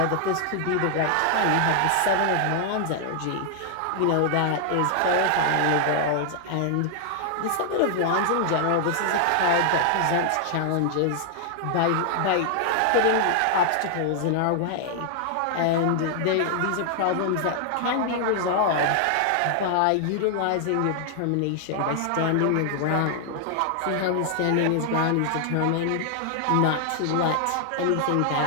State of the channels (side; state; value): both; different; correlation 0.00